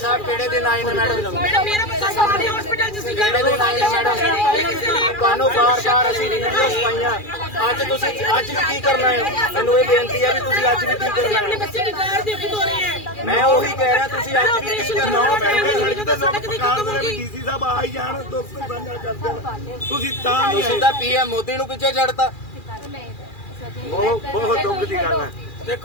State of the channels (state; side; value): late; right; 2.4 ms